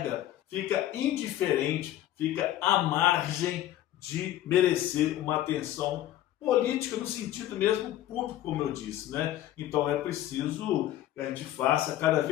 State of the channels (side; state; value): right; quieter; 13.3 dB